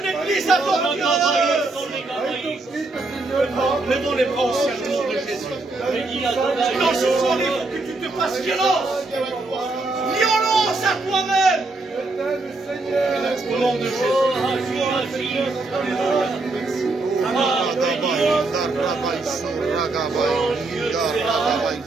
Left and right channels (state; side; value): quieter; left; 3.2 dB